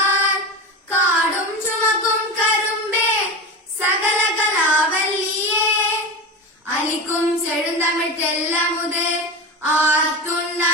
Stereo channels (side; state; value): both; normal; correlation 0.24